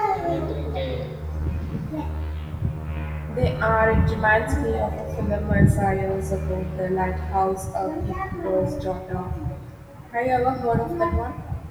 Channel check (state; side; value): identical; both; correlation 1.00